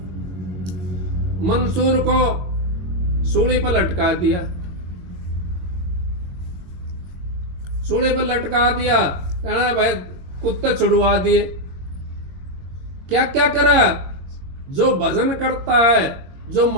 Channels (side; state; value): left; late; 22 ms